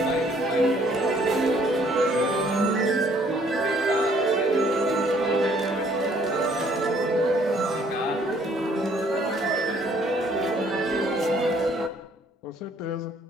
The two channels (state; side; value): normal; both; correlation 0.62